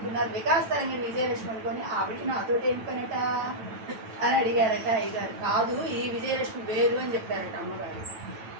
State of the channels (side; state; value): left; late; 9.1 ms